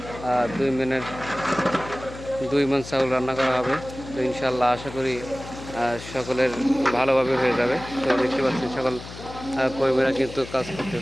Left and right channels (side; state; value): left; noise; hum, 13 dB below the sound